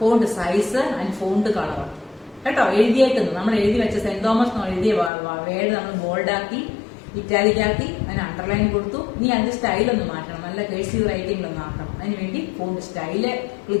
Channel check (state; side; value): drops out; right; at 5.1 s